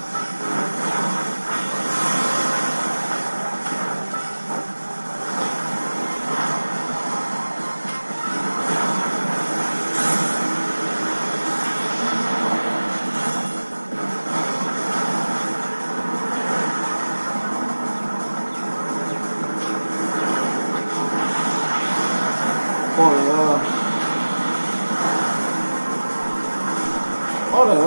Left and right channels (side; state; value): both; inverted; correlation -1.00